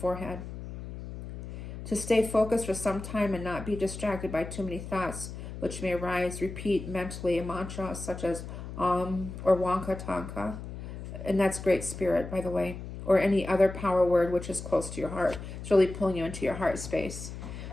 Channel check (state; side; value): noise; left; hum, 10 dB below the sound